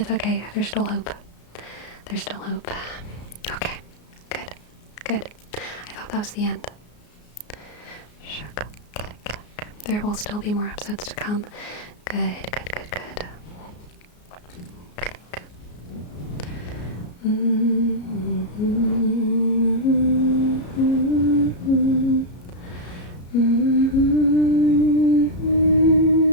okay. There's still hope. There's still hope. Okay. Good. Good. I thought that was the end. Shuck. Click, click. There will still be more episodes to come. Good, good, good, good. Click.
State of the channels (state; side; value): late; right; 33 ms